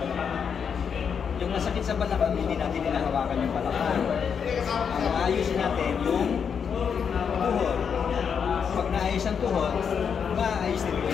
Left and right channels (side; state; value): right; quieter; 6.9 dB